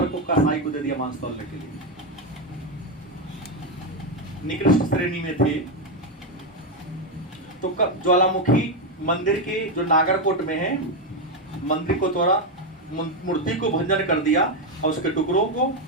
को कसाई को दे दिया मांस तौलने के लिए। निकृष्ट श्रेणी में थे। तो ज्वालामुखी मंदिर के जो नागरकोट में है, मंदिर को तोड़ा, मूर्ति को भंजन कर दिया और उसके टुकड़ों को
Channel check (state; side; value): normal; both; correlation 0.07